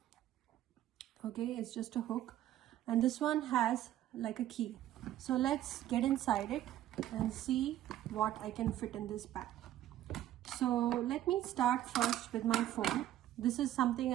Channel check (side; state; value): left; quieter; 12.8 dB